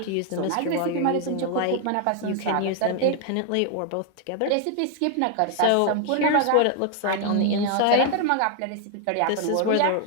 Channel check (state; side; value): different; both; correlation 0.00